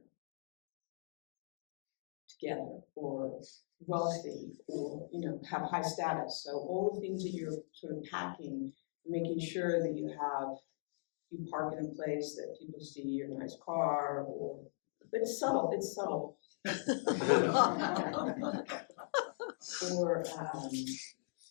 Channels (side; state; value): right; silent; digital silence